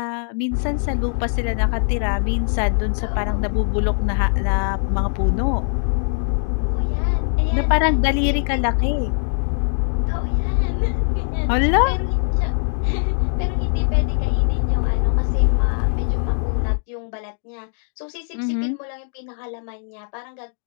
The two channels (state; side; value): silent; right; digital silence